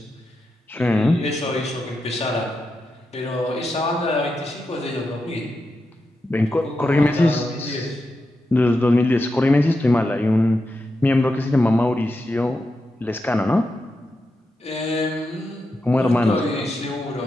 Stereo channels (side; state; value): both; normal; correlation 0.88